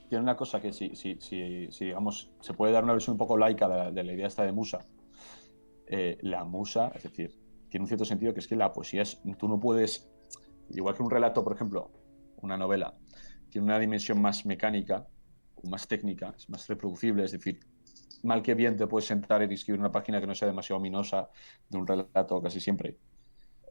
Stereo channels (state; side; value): inverted; both; correlation -1.00